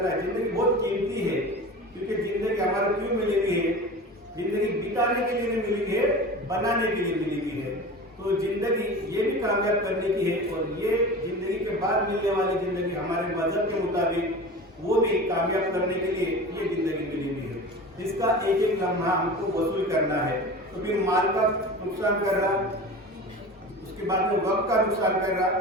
है, जिंदगी बहुत कीमती है, क्योंकि जिंदगी हमारा क्यों मिली हुई है, जिंदगी बिताने के लिए नहीं मिली है, बनाने के लिए मिली हुई है। तो जिंदगी ये भी कामयाब करने की है, और ये जिंदगी के बाद मिलने वाली जिंदगी हमारे मजहब के मुताबिक वो भी कामयाब करने के लिए ये जिंदगी मिली हुई है। इसका एक एक लम्हा हमको वसूल करना है। तो फिर माल का नुकसान कर रहा, उसके बाद में वक्त का नुकसान कर रहा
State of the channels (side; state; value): both; normal; correlation 0.33